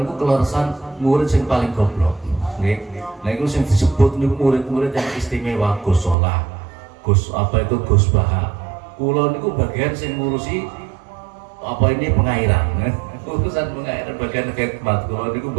kelorosan murid sing paling goblok nggih. Nah iku sing disebut niku murid-murid yang istimewa Gus Solah, Gus Baha. Kula niku bagian sing ngurusi pengairan. Urusan pengairan bagian khidmat. Kula niku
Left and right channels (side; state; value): left; drops out; at 6.2 s